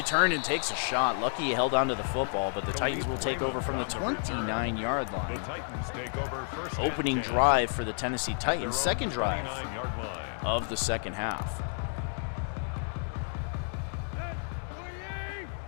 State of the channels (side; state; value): right; silent; 56 dB below the other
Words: and takes a shot. Lucky he held onto the football, but the Titans will take over from the 29-yard line. The Titans take over first. Opening drive for the Tennessee Titans, second drive of the second half.